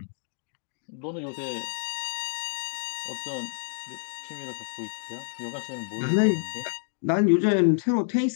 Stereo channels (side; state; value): right; silent; digital silence